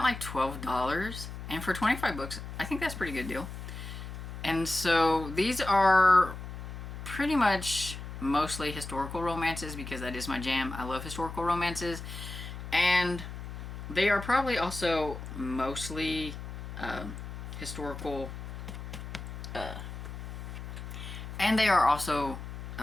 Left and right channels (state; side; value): noise; left; hum, 9 dB below the sound